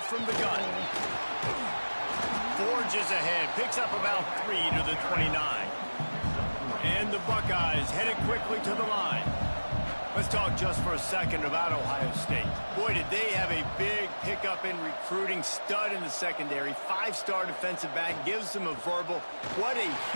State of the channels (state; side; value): inverted; both; correlation -1.00